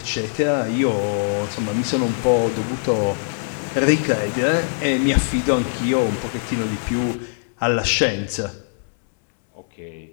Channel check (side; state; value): right; silent; digital silence